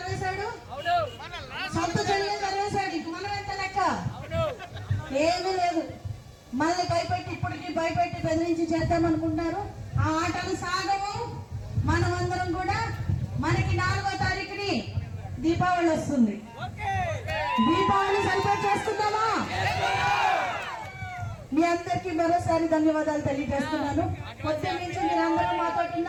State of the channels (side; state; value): both; identical; correlation 1.00